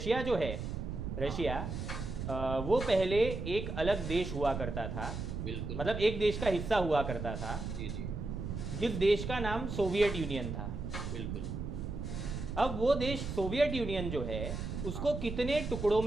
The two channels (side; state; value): right; noise; rumble, 5 dB below the sound